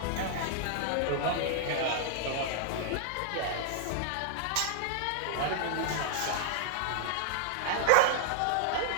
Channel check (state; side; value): different; both; correlation -0.01